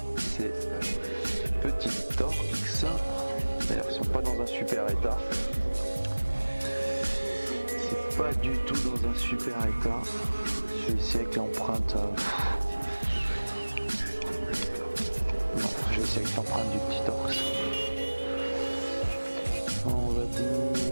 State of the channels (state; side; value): inverted; both; correlation -1.00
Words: ces petites torx. D'ailleurs, ils sont pas dans un super état. C'est pas du tout dans un super état. Je vais essayer avec l'empreinte. Non, je vais essayer avec l'empreinte du petit torx. On va